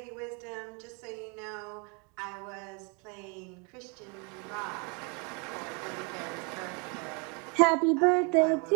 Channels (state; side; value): quieter; left; 33.2 dB